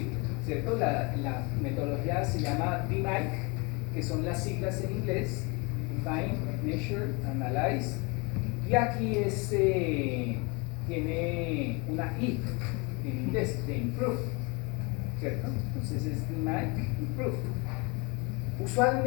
¿cierto? La metodología se llama DMAIC, que son las siglas en inglés: Define, Measure, Analyze, y aquí tiene una I en inglés, de Improve, ¿cierto? Entonces es DMAIC, Improve.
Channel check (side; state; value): right; quieter; 28.8 dB